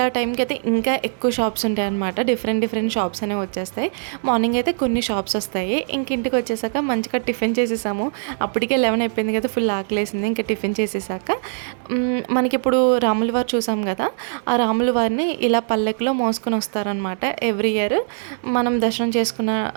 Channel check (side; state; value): left; silent; digital silence